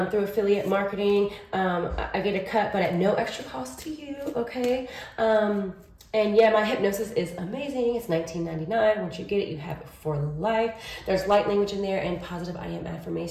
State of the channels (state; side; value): identical; both; correlation 1.00